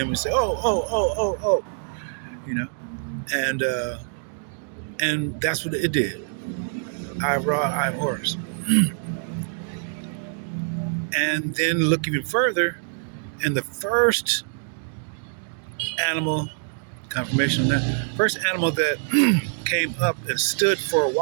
we say, oh, you know, and that's what it did. Eye of Ra, Eye of Horus. And then look even further, and the first animal, confirmation on that, first animal that came up and stood for a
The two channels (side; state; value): left; silent; digital silence